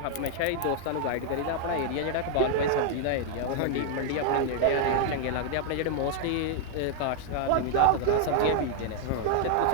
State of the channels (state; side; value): different; both; correlation 0.00